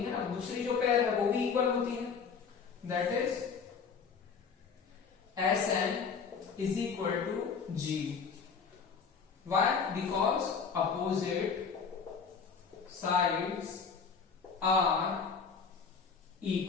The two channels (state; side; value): quieter; right; 5.9 dB